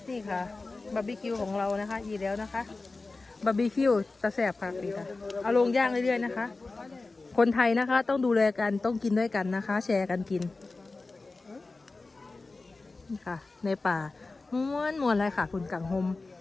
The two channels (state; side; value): quieter; right; 3.5 dB